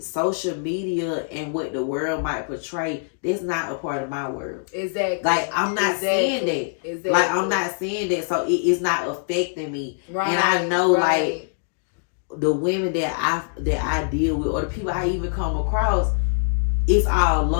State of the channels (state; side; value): silent; right; digital silence